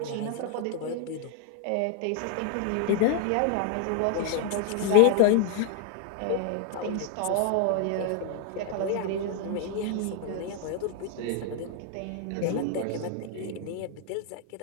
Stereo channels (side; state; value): both; different; correlation 0.00